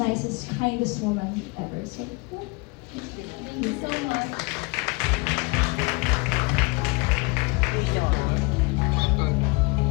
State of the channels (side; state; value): right; quieter; 27.7 dB